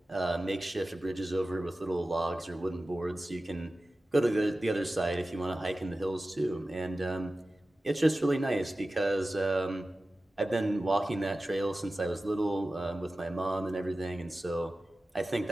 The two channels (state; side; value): normal; both; correlation 0.96